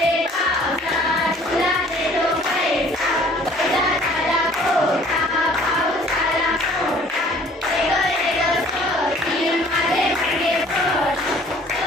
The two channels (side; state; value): both; normal; correlation 0.54